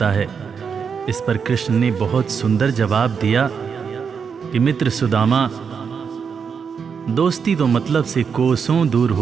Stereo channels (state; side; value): quieter; left; 6.3 dB